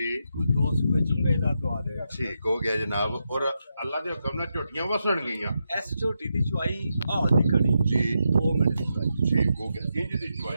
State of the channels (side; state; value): both; inverted; correlation -0.85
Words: ਕੋਈ 2 ਸੂਏ ਚੁੰਗੇ ਦਾ ਦਵਾ ਦੇਗਾ। ਠੀਕ ਹੋ ਗਿਆ ਜਨਾਬ। ਔਰ ਅੱਲਾ ਦੇ ਹੁਕਮ ਨਾਲ ਝੋਟੀਆਂ ਵਸਣ ਗਈਆਂ। ਇਸ ਝੋਟੀ ਦੀ ਚੁਆਈ ਹਾਲ ਦੀ ਖੜੀ ਜੀ 2 ਮਿੰਟ ਦੀ ਚੁਆਈ ਠੀਕ ਹੋ ਗਿਆ। ਇੰਜ ਦੀ